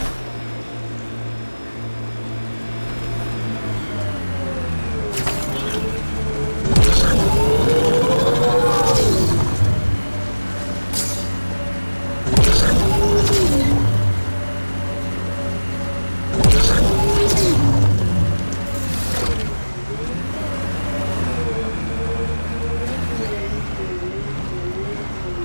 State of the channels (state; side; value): inverted; both; correlation -1.00